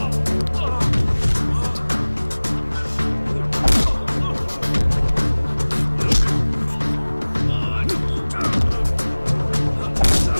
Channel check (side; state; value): both; inverted; correlation -1.00